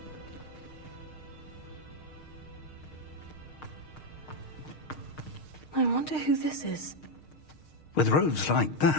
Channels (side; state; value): right; late; 6.5 ms